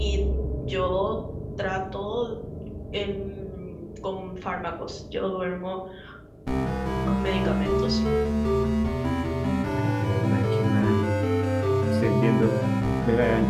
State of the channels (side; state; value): both; identical; correlation 1.00